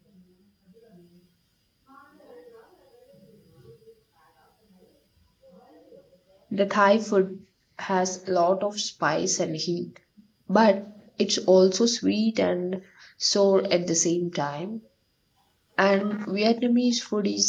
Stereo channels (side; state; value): both; identical; correlation 1.00